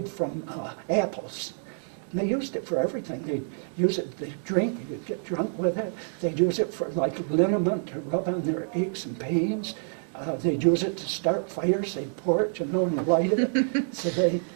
from apples. And they used it for everything. They'd use it, they'd drink, you'd get drunk with it. They'd use it for like liniment to rub on their aches and pains. They'd use it to start fires. They'd pour it, you know, and light it. So they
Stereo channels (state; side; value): silent; left; digital silence